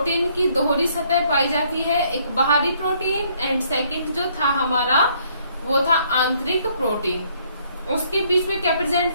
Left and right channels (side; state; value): both; inverted; correlation -0.66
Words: की दोहरी सतह पाई जाती है, एक बाहरी प्रोटीन एंड सेकंड जो था हमारा वो था आंतरिक प्रोटीन। उसके बीच में क्या प्रेजेंट